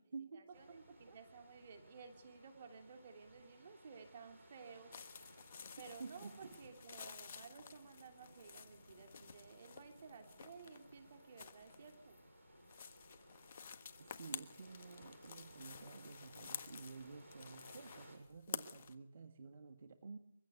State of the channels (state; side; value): inverted; both; correlation -0.74